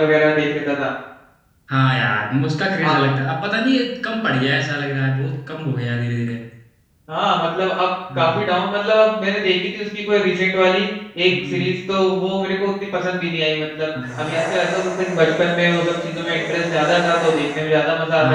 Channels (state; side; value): identical; both; correlation 1.00